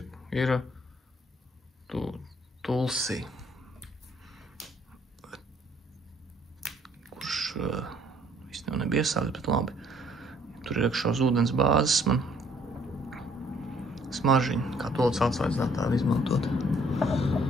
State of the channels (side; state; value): both; normal; correlation 0.62